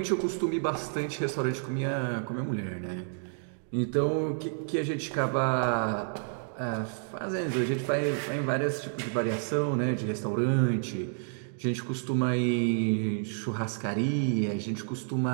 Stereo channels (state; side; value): silent; left; digital silence